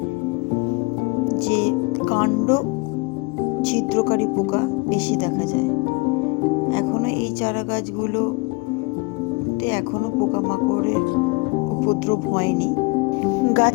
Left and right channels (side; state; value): right; quieter; 27.7 dB